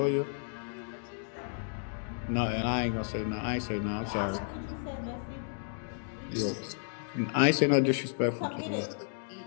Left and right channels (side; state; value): right; silent; digital silence